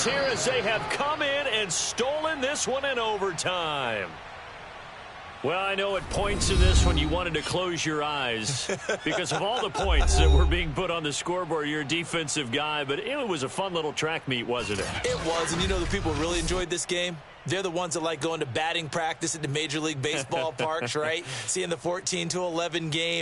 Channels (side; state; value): both; identical; correlation 1.00